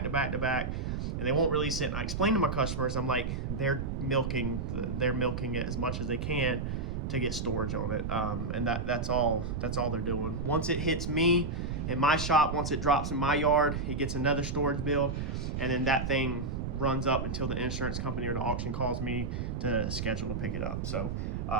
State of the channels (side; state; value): right; noise; rumble, 3 dB below the sound